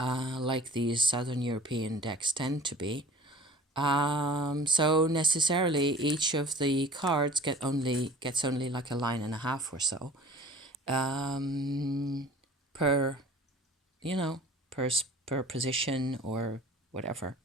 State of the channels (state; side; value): normal; both; correlation 0.46